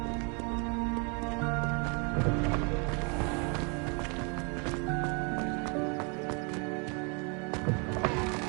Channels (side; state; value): left; quieter; 34.4 dB